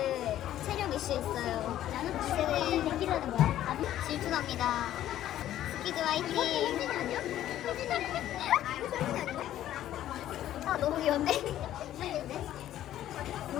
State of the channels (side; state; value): right; quieter; 12.5 dB